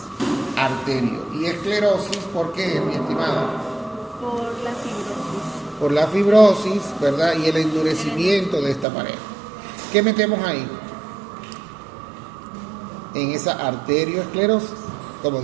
Arterio. Y esclerosis, ¿por qué, mi estimada? Por la fibrosis, ¿verdad? Y el endurecimiento de esta pared. ¿Qué metemos ahí? En esa arterioesclerosis, como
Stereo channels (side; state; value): left; drops out; at 8.8 s